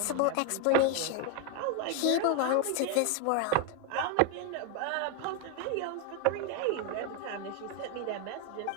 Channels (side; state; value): both; different; correlation 0.01